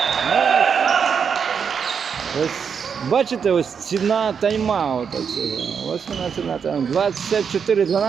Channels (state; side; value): quieter; left; 6.7 dB